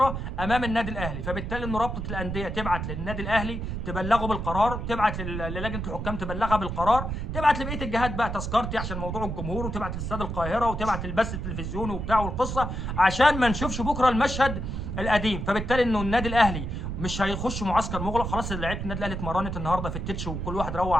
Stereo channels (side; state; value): right; noise; rumble, 4 dB below the sound